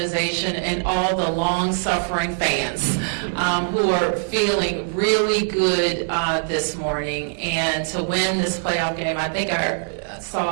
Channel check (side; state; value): left; silent; 64 dB below the other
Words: and all the long-suffering fans who are feeling really good this morning. And to win this playoff game, I think I